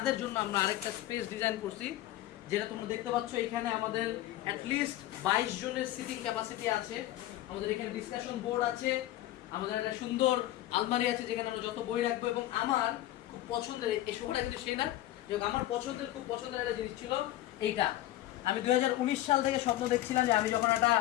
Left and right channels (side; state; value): right; quieter; 15.0 dB